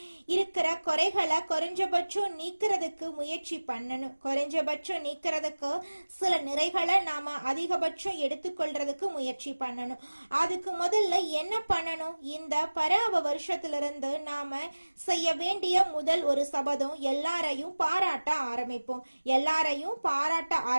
இருக்கிற குறைகளை குறைஞ்சபட்சம் நீக்கிறதுக்கு முயற்சி பண்ணணும். குறைஞ்சபட்சம் நீக்கிறதுக்கு சில நிறைகளை நாம அதிகபட்சம் எடுத்துக்கொள்றதுக்கு முயற்சி பண்ணணும். அதுக்கு முதல்ல என்ன பண்ணணும்? இந்த பராப வருஷத்திலிருந்து நாம செய்ய வேண்டிய முதல் ஒரு சபதம், எல்லாரையும் பாராட்ட ஆரம்பிப்போம். எல்லாரையும் பாராட்ட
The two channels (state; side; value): inverted; both; correlation -1.00